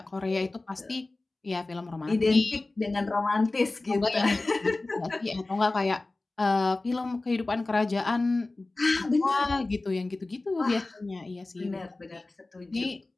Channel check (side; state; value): right; quieter; 3.1 dB